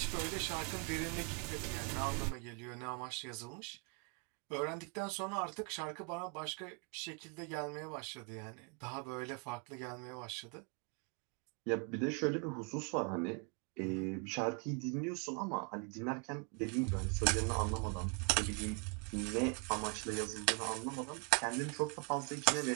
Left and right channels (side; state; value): left; quieter; 36.8 dB